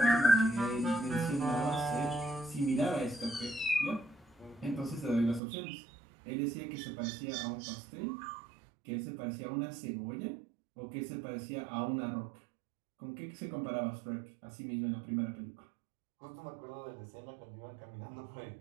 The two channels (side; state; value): left; drops out; at 5.4 s